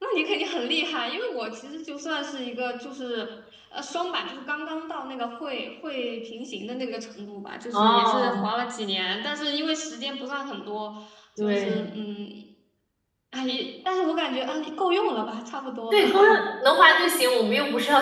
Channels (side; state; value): both; identical; correlation 1.00